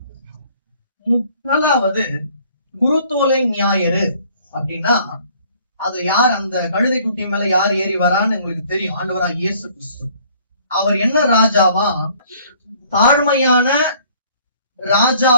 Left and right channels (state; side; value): inverted; both; correlation -0.58